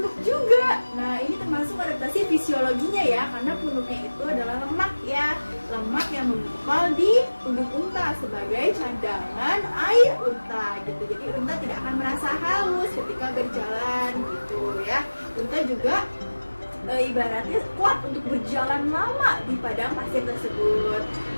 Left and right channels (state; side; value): inverted; both; correlation -1.00